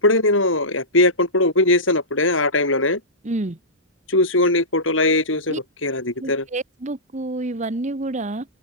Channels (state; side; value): normal; both; correlation -0.17